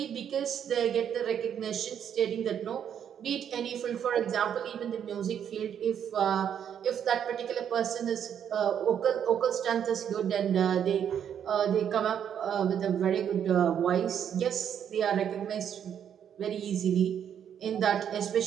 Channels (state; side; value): quieter; left; 8.8 dB